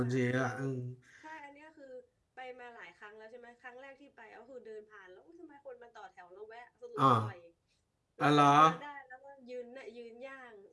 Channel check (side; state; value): both; identical; correlation 1.00